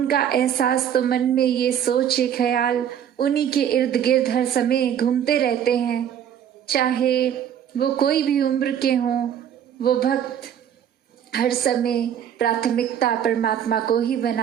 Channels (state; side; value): quieter; left; 9.4 dB